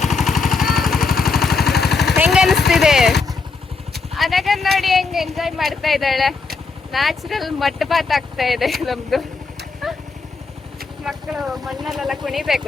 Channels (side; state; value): right; quieter; 4.5 dB